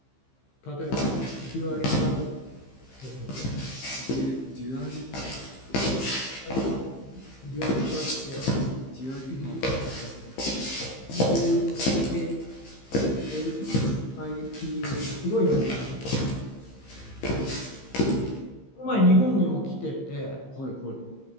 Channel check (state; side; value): late; right; 15 ms